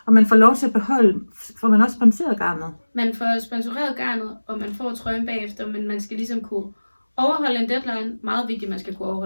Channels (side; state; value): both; inverted; correlation -1.00